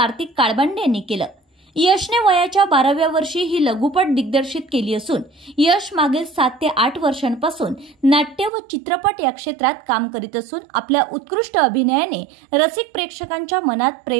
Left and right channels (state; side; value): drops out; left; at 8.5 s